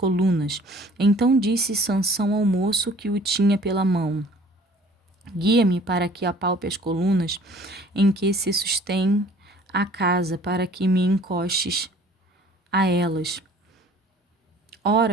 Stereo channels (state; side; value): normal; both; correlation 0.52